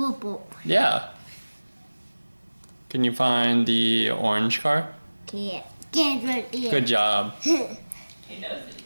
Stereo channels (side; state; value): both; inverted; correlation -1.00